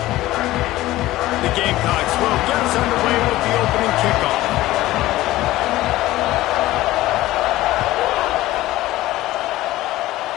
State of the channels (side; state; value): right; quieter; 16.6 dB